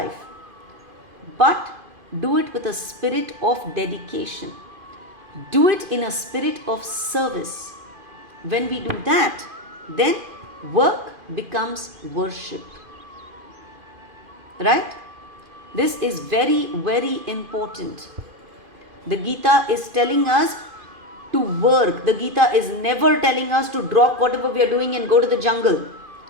But do it with a spirit of dedication. Do it in a spirit of service. When we do that, then work becomes worship. Right? This is very, very important. The Gita is telling us to work. The Gita is never telling us to drop whatever we are doing and go to the jungle.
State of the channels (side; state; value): left; late; 2.5 ms